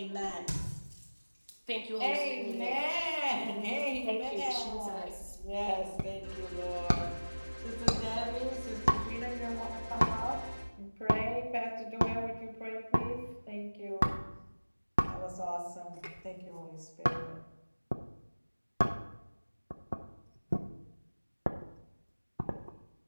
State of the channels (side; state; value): both; inverted; correlation -1.00